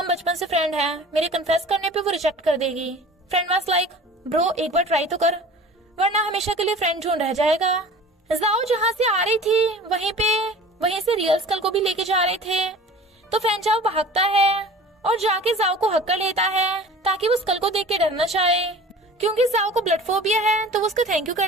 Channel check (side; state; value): both; normal; correlation 0.42